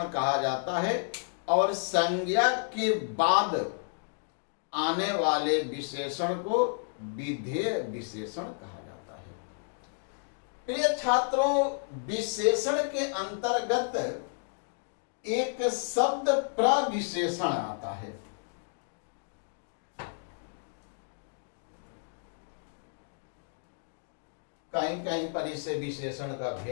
कहा जाता है और संज्ञा के बाद आने वाले विशेषण को विधेय विशेषण कहा जाता है। प्रिय छात्रों, विशेषण के अंतर्गत एक शब्द प्रविशेषण आता है। कहीं कहीं पर इसे विशेषण का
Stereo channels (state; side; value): silent; right; digital silence